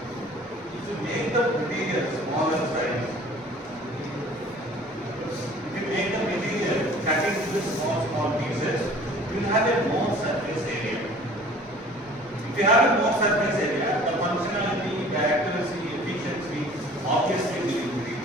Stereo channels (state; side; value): normal; both; correlation 0.49